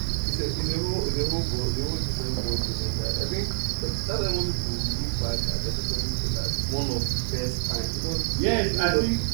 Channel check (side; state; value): left; silent; digital silence